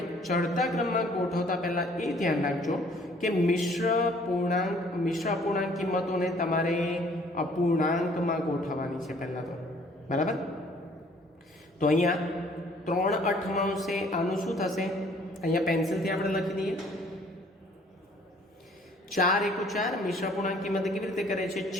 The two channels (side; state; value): both; normal; correlation 0.58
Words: ચડતા ક્રમમાં ગોઠવતા પહેલા એ ધ્યાન રાખજો કે મિશ્ર અપૂર્ણાંક કિંમતોને તમારે અપૂર્ણાંકમાં ગોઠવવાની છે પહેલા તો. બરાબર? તો અહીંયા 3/8 આનું શું થશે? અહીંયા પેન્સિલથી આપણે લખી દઈએ. 4 × 4 મિશ્ર અપૂર્ણાંક કિંમત કેવી રીતે કરે છે?